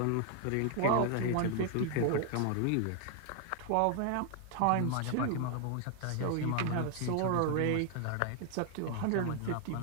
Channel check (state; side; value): different; both; correlation 0.00